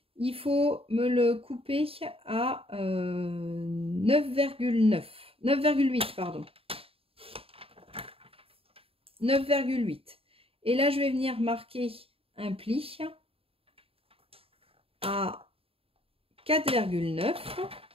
il faut me le couper à 9,8, pardon. 9,8. Et là, je vais venir marquer un pli à 4,9.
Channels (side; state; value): left; late; 0.27 ms